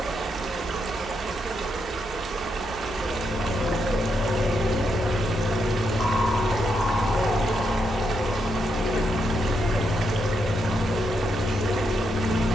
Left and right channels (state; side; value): normal; both; correlation 0.80